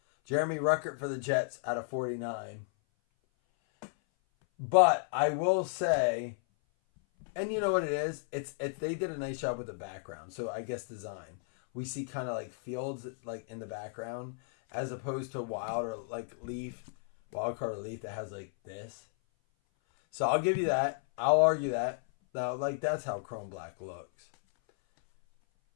Jeremy Ruckert for the Jets out of 49. But I will say, and you know what it is? It's they did a nice job with the background. So I guess design. We see kind of like fields like in the background as opposed to wild or like wild card or leaf that has like this. So I'll give you that. I'll argue that. Now, like that's how Chrome Black looks.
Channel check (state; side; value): silent; right; 56 dB below the other